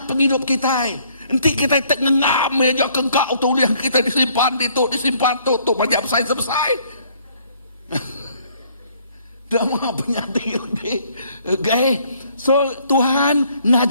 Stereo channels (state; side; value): inverted; both; correlation -0.63